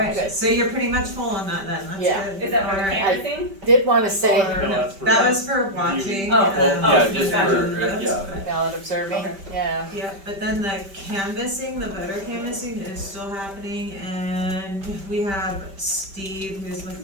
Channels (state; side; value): late; left; 5.1 ms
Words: so you're pretty much full on that then, that's Yeah. good. Is that for Alright. canvassing? Did wanna say, That was for watching. Oh, yeah, just for, yeah. ballot observing, Okay. yeah. Yeah, but then the canvassing, the voter canvassing is still happening, and we have Steve, who's with